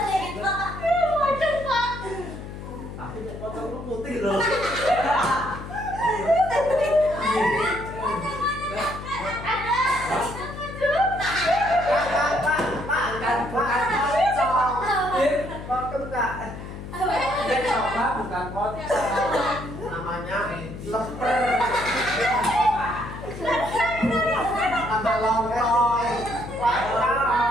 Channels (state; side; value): noise; left; hum, 10 dB below the sound